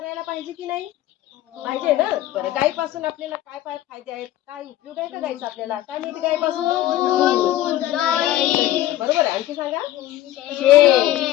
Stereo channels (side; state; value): right; quieter; 14.1 dB